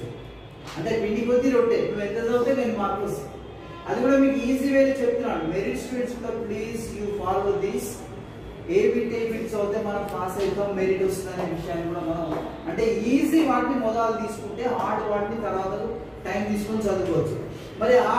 అంటే పిండి కొద్ది రొట్టె నువ్వు ఎంత చదివితే 10 మార్కులు వస్తాయి. అది కూడా మీకు ఈజీ వేలో చెప్తున్నాను. మెరిట్ స్టూడెంట్స్ కూడా please you follow this. A bit చదివితే మనం పాస్ అవుతాం మెరిట్ వస్తుంది అనే విషయాన్ని కూడా మనం అంటే ఈజీ వాటిని మొదలు తీసుకుంటే హార్డ్ వాటిని తర్వాత టైం తీసుకొని చదువుకోవచ్చు. మరి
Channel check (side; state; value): both; identical; correlation 1.00